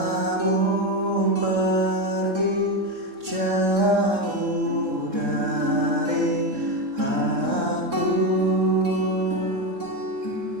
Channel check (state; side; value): late; left; 3.7 ms